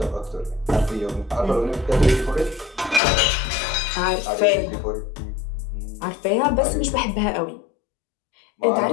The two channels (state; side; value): drops out; right; at 3.0 s